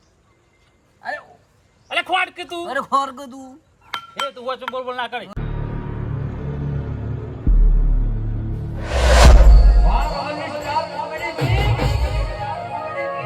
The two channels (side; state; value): both; identical; correlation 1.00